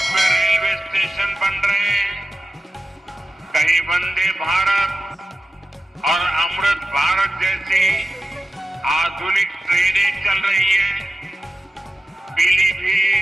रेलवे स्टेशन बन रहे हैं, कहीं वंदे भारत और अमृत भारत जैसी आधुनिक ट्रेनें चल रही हैं।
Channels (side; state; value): both; normal; correlation 0.93